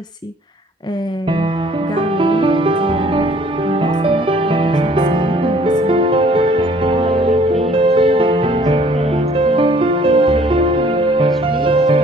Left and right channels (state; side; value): normal; both; correlation 0.58